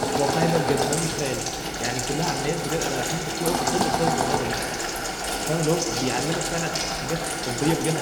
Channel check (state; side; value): identical; both; correlation 1.00